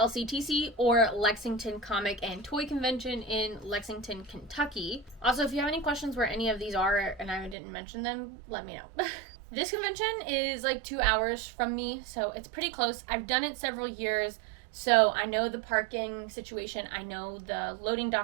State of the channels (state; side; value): drops out; left; at 7.6 s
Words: or Lexington Comic and Toy Convention in Lexington, Kentucky. Also, if you have any questions where any of these are and I didn't mention them, let me know. This convention is like 2 hours from me, so it's pretty close. I've done it several years, so I know the parking situation, I know the loading